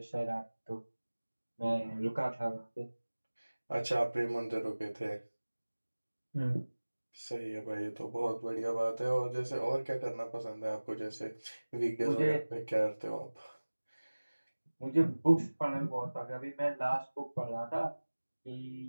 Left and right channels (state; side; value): inverted; both; correlation -1.00